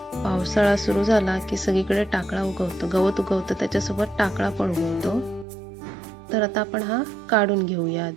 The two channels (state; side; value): drops out; left; at 5.5 s